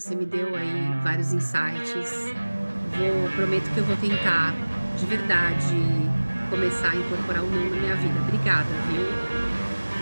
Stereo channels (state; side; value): inverted; both; correlation -1.00